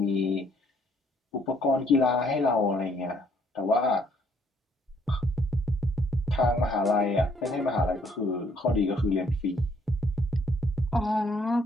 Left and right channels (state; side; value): normal; both; correlation 0.67